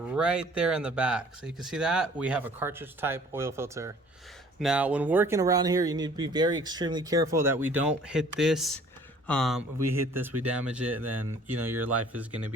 there in the back. So you can see that we have a cartridge type oil filter. Now, when working around here, you need to be very extremely careful that we don't hit this. If we hit this, we damage it, then you know your life is going to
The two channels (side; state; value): both; normal; correlation 0.54